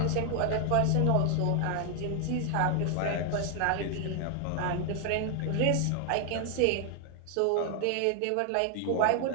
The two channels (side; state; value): both; different; correlation 0.00